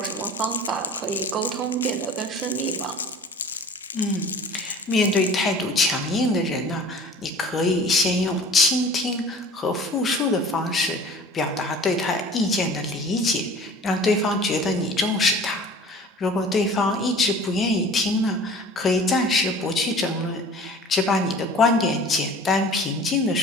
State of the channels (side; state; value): both; normal; correlation 0.44